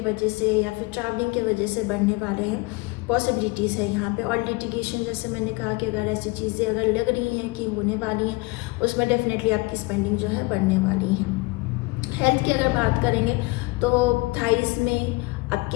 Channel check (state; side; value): quieter; right; 25.1 dB